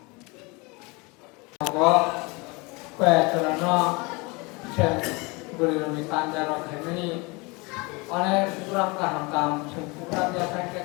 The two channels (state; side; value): quieter; right; 27.0 dB